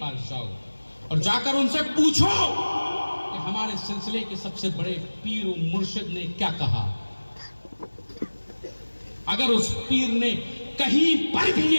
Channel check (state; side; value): inverted; both; correlation -1.00